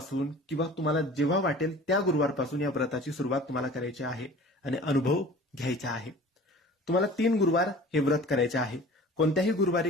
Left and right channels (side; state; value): both; normal; correlation 0.44